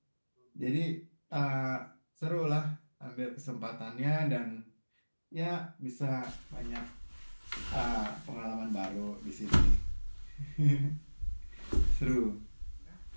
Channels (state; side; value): inverted; both; correlation -1.00